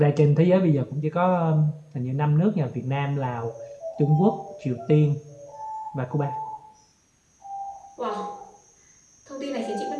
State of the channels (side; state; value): both; identical; correlation 1.00